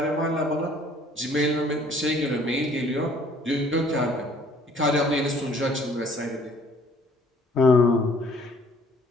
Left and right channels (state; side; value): normal; both; correlation 0.57